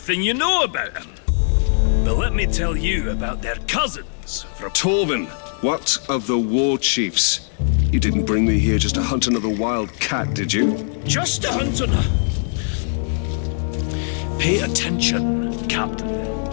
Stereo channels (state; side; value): silent; right; 65 dB below the other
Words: you know about them. But let me tell you about their cousins from... Torvin, what of the war chiefs? You didn't bring me here just to hunt another wild cat, did you? Just to hunt another... Pay attention, Captain.